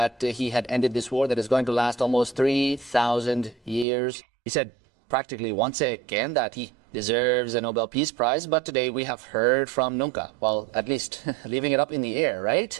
he had ended this war that is going to last almost 3,000 years. He said practically once again that he deserves a Nobel Peace Prize, but today we have heard from Nunca, well, at least leaving it up in the air, right?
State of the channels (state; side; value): drops out; left; at 3.9 s